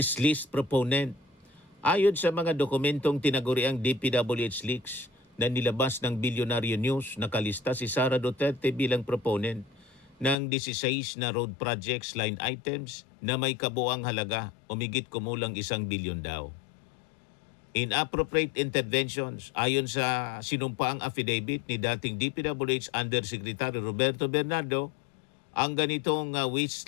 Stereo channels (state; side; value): drops out; right; at 10.4 s